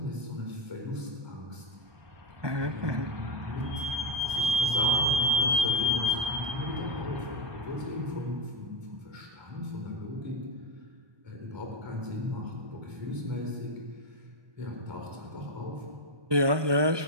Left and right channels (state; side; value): late; left; 1.2 ms